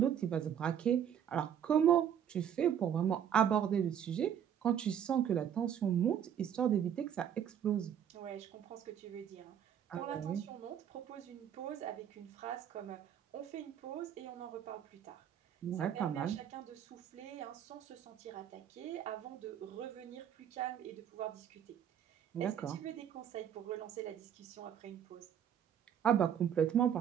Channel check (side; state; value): left; quieter; 9.2 dB